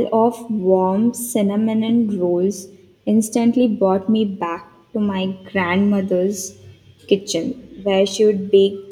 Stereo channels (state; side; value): identical; both; correlation 1.00